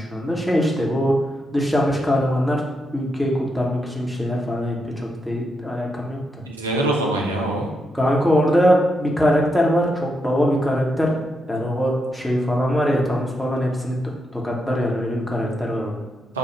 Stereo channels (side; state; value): both; normal; correlation 0.83